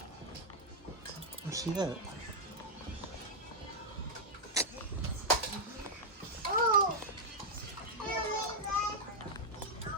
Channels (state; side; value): normal; both; correlation -0.03